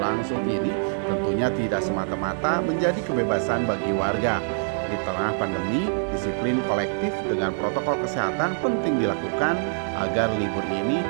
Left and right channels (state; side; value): silent; left; digital silence